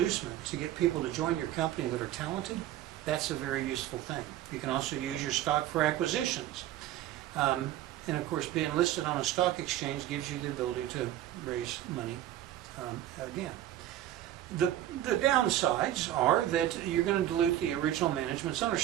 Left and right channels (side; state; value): left; quieter; 13.0 dB